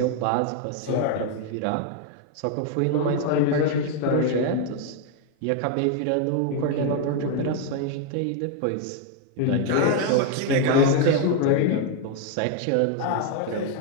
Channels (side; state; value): both; different; correlation 0.01